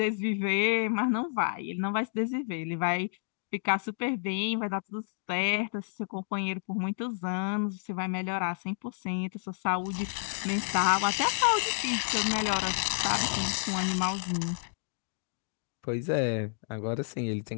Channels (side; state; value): right; silent; digital silence